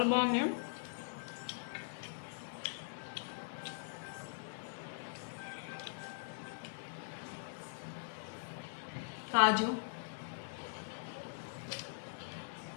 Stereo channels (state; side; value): silent; right; digital silence